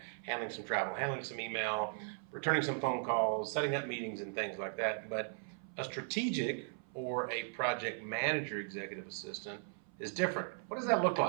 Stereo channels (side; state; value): left; silent; 53 dB below the other